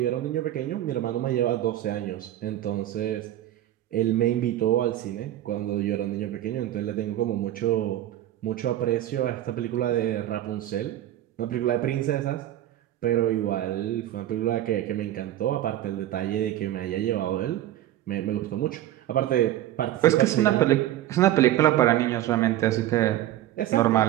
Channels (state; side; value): quieter; left; 13.4 dB